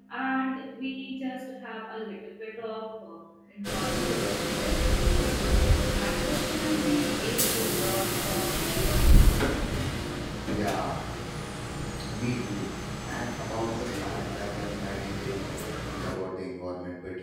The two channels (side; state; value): both; identical; correlation 1.00